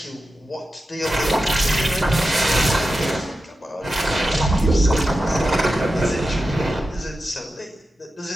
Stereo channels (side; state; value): both; normal; correlation 0.92